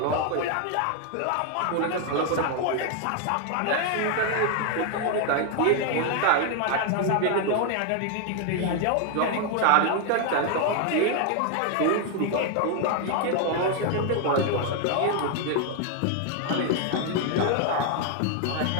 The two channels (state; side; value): different; both; correlation 0.01